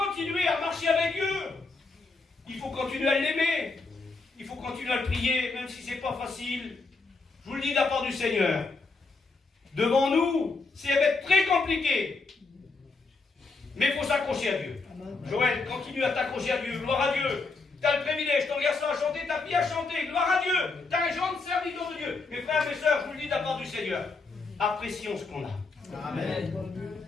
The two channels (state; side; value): quieter; right; 3.9 dB